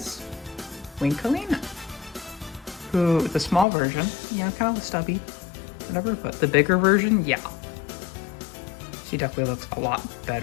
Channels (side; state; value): right; drops out; at 3.7 s